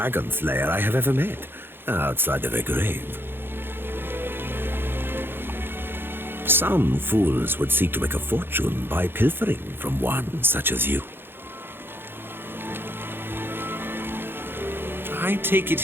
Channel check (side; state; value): left; late; 0.10 ms